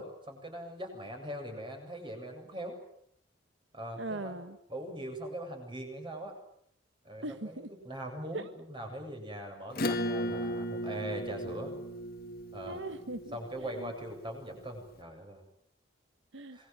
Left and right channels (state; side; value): normal; both; correlation 0.33